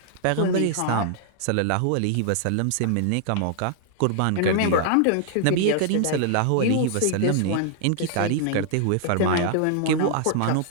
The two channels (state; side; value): different; both; correlation -0.01